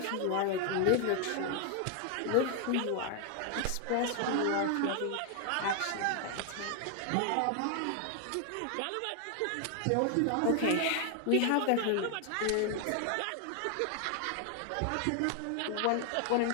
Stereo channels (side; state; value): both; different; correlation 0.00